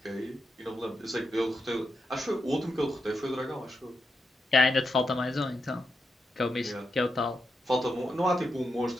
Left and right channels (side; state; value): both; normal; correlation 0.85